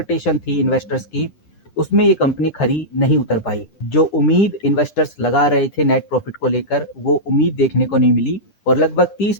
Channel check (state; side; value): late; right; 9.9 ms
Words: थी इन्वेस्टर्स की, उसमें ये कंपनी खरी नहीं उतर पाई। जो उम्मीद इन्वेस्टर्स लगा रहे थे नेट प्रॉफिट को लेकर, वो उम्मीद देखने को नहीं मिली और लगभग